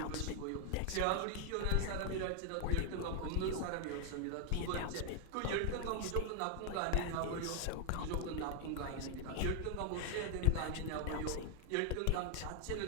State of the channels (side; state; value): both; different; correlation 0.00